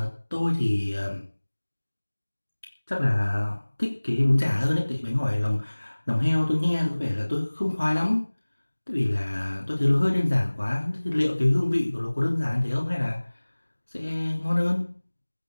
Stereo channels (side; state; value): both; inverted; correlation -1.00